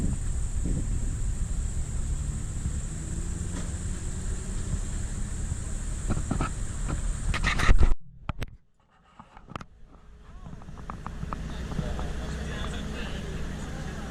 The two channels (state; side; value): identical; both; correlation 1.00